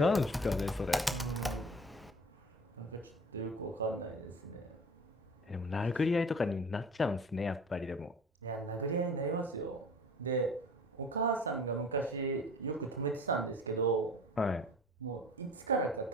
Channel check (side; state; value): both; normal; correlation 0.43